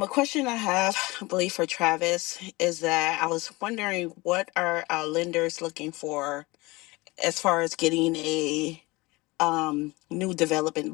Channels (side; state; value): right; quieter; 22.7 dB